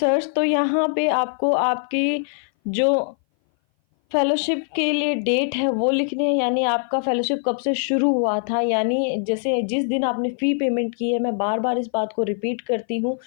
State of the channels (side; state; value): right; silent; 58 dB below the other